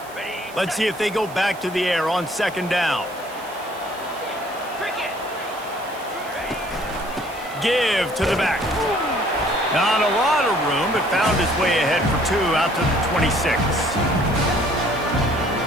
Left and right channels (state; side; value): noise; right; hiss, 20 dB below the sound